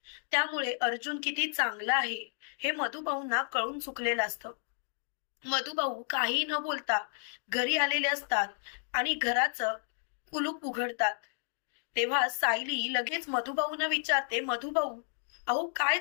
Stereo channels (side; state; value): right; silent; 56 dB below the other